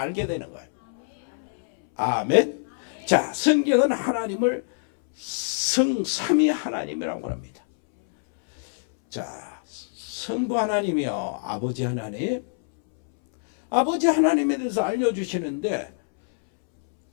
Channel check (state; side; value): silent; right; 62 dB below the other